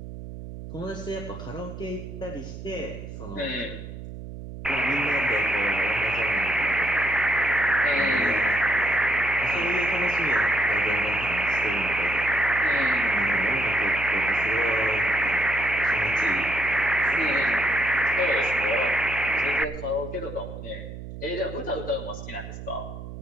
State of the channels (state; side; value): noise; right; hum, 11 dB below the sound